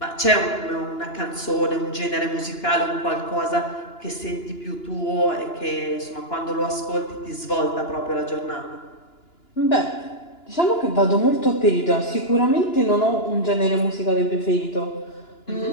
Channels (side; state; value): right; late; 2.9 ms